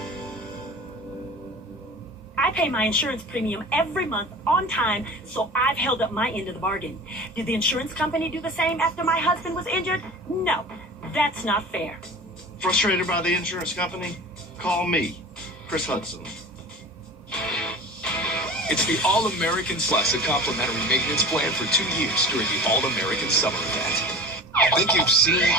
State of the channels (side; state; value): both; normal; correlation 0.37